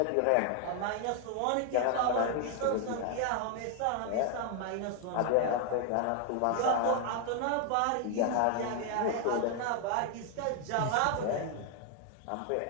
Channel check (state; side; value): different; both; correlation 0.00